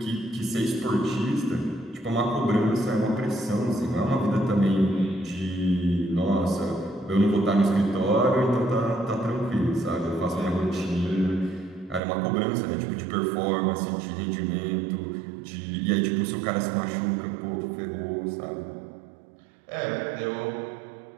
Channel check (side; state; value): left; drops out; at 12.0 s